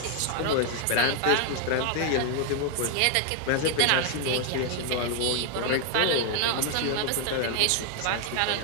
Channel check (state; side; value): different; both; correlation 0.00